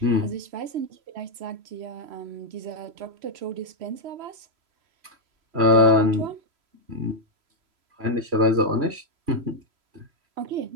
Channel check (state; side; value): late; left; 3.0 ms